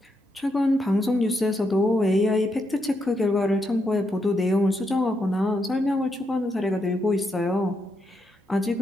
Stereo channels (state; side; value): normal; both; correlation 0.81